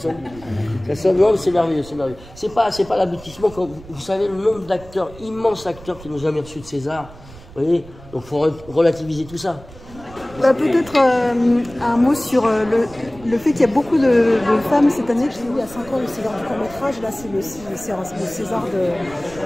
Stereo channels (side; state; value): right; noise; rumble, 19 dB below the sound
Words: ouais, c'est merveilleux, c'est merveilleux. C'est pas l'aboutissement. Vous savez, le nombre d'acteurs, immenses acteurs qui n'ont jamais reçu de César. Vous voyez, donc il faut relativiser tout ça. Bah, peut-être un mot sur le fait qu'il y a beaucoup de femmes cette année. J'ai eu il y a 5 ans le César du court-métrage. Là, c'est le César